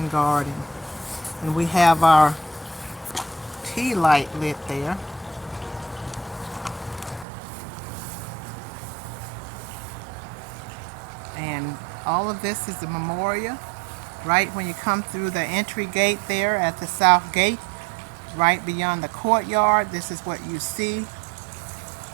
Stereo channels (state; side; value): drops out; left; at 7.2 s